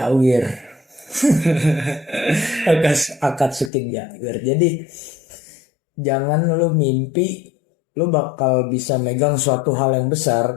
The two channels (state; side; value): drops out; right; at 3.7 s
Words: Akatsuki Jawir. Jadi jangan lu mimpi lu bakal bisa megang suatu hal yang besar